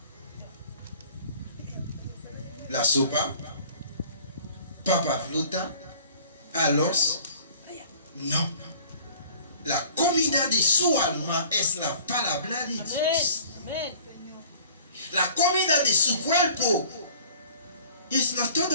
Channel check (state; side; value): inverted; both; correlation -0.49